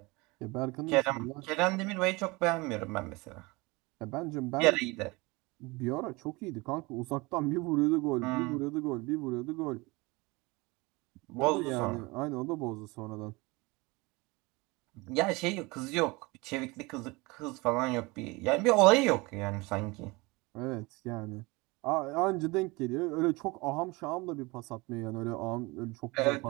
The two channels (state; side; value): quieter; left; 24.4 dB